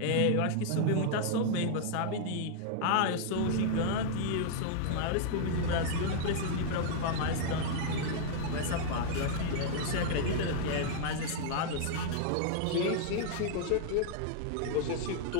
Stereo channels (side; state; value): both; different; correlation -0.01